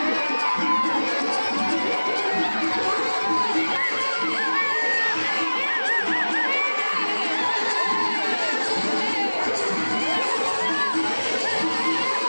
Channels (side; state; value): both; inverted; correlation -1.00